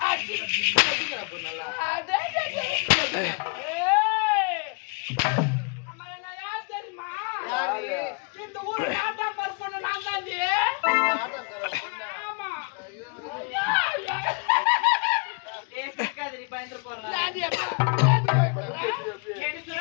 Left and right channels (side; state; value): right; quieter; 32.8 dB